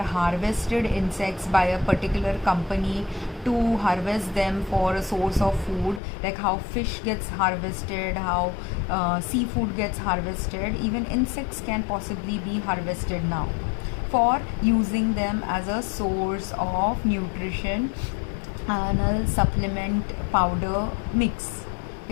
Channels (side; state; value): right; drops out; at 6.0 s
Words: insects by a particular company to harvest them for a source of food, like how fish gets harvested, how seafood gets harvested, even insects can possibly be harvested now for using them as a source of nutrition and a supplement powder mix,